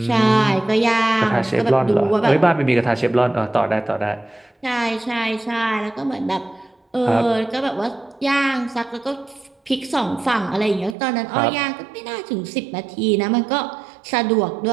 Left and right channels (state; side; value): drops out; left; at 11.0 s